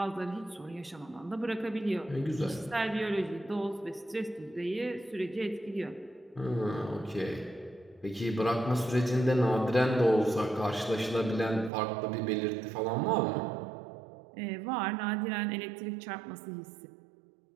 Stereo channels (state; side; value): drops out; left; at 11.7 s